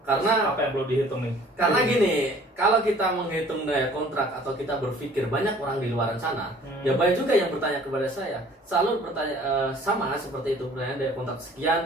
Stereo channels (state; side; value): normal; both; correlation 0.53